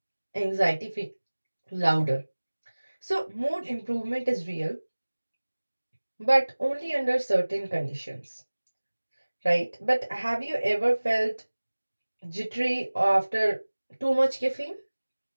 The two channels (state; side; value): inverted; both; correlation -1.00